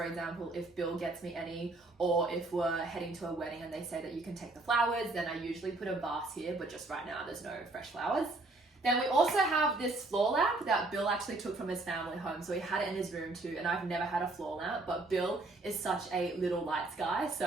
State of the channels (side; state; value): left; quieter; 3.0 dB